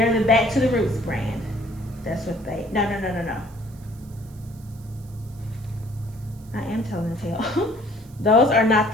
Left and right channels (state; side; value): noise; right; hiss, 26 dB below the sound